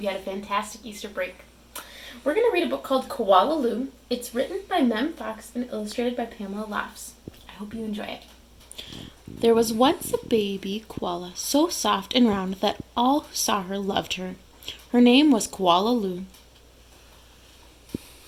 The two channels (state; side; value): identical; both; correlation 1.00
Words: you had a fantastic Easter break. We're going to read a book called Koala Lou. It's written by Mem Fox and illustrated by Pamela Laughs. I hope you enjoy it. There was once a baby koala so soft and round that all who saw her loved her. Her name was Koala Lou.